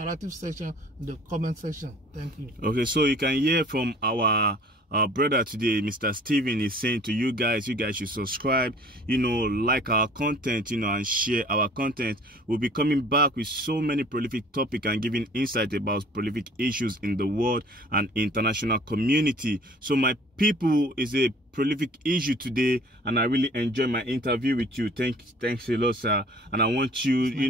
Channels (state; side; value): normal; both; correlation 0.50